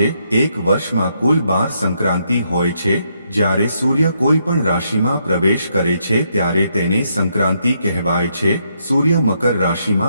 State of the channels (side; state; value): both; inverted; correlation -0.77